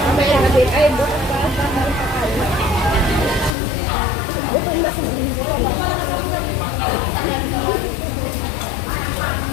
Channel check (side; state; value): right; drops out; at 3.6 s